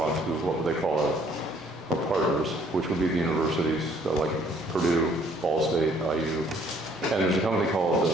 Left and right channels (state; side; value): normal; both; correlation 0.62